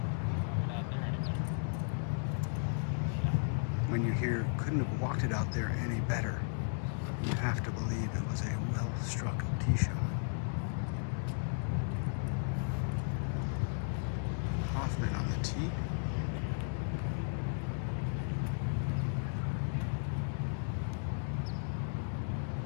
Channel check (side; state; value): right; silent; digital silence